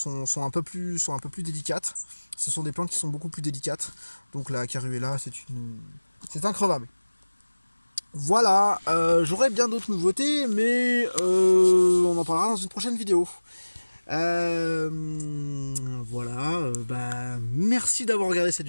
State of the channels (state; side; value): inverted; both; correlation -1.00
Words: un peu plus délicates. Ce sont des plantes qui sont beaucoup plus délicates. Donc la Caruela, c'est increvable. Voilà, j'aurai bien d'autres nouveautés, mais on en parlera dans une prochaine vidéo. Voilà, merci d'avoir regardé cette